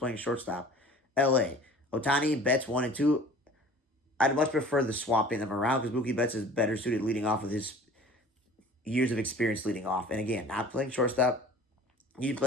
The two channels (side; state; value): both; normal; correlation 0.46